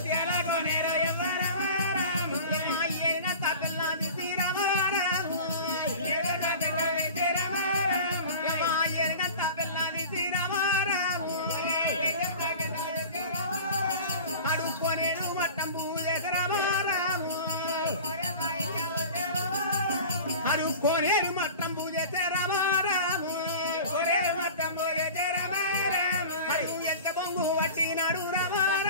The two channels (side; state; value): both; inverted; correlation -0.38